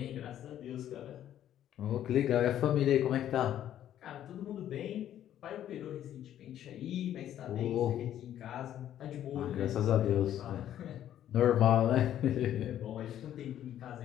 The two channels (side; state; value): right; quieter; 11.3 dB